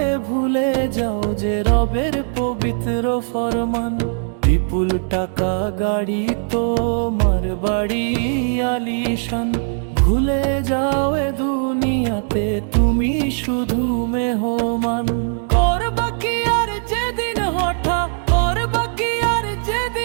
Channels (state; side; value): silent; left; 66 dB below the other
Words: ভুলে যাও যে রবের পবিত্র ফরমান। বিপুল টাকা গাড়ি তোমার বাড়ি আলিশান, ভুলে যাও এ দুনিয়াতে তুমি শুধু মেহমান। করবা কি আর যেদিন হঠাৎ, করবা কি আর